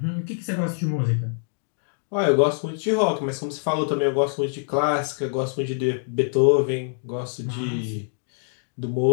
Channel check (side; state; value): right; silent; digital silence